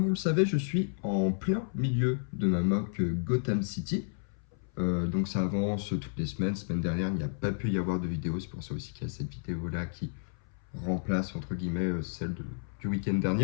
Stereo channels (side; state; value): right; silent; 57 dB below the other